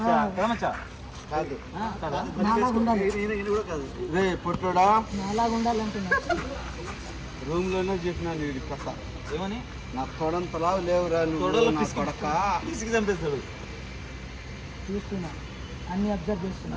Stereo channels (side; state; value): both; identical; correlation 1.00